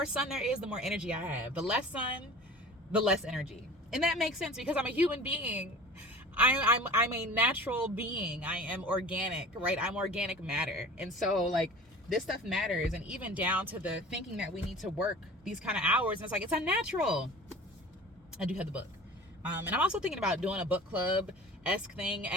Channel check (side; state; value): both; normal; correlation 0.41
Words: sun there is, the more energy I have. The less sun, the less energy. And that makes sense because I'm a human being. I'm a natural being. I am organic, right? I'm organic matter. And so like this stuff matters. And even down to the thinking that we need to work these kind of hours. And it's like, it's unnatural. I do have the book. And I'm also thinking about doing a book club-esque thing,